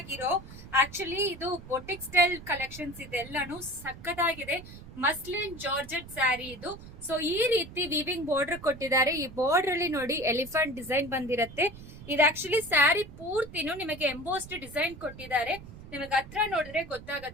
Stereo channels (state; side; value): noise; right; rumble, 15 dB below the sound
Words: ಆಕ್ಚುಲಿ ಇದು ಬೊಟಿಕ್ ಸ್ಟೈಲ್ ಕಲೆಕ್ಷನ್ಸ್ ಇದೆಲ್ಲಾನು ಸಕ್ಕದಾಗಿದೆ. ಮಸ್ಲಿನ್ ಜಾರ್ಜೆಟ್ ಸ್ಯಾರಿ ಇದು. ಸೊ ಈ ರೀತಿ ವೀವಿಂಗ್ ಬಾರ್ಡರ್ ಕೊಟ್ಟಿದ್ದಾರೆ. ಈ ಬಾರ್ಡರ್ ಅಲ್ಲಿ ನೋಡಿ ಎಲಿಫೆಂಟ್ ಡಿಸೈನ್ ಬಂದಿರತ್ತೆ. ಇದು ಆಕ್ಚುಲಿ ಸ್ಯಾರಿ ಪೂರ್ತಿನೂ ನಿಮಗೆ ಎಂಬೋಸ್ಡ್ ಡಿಸೈನ್ ಕೊಟ್ಟಿದ್ದಾರೆ. ನಿಮಗೆ ಹತ್ರ ನೋಡಿದ್ರೆ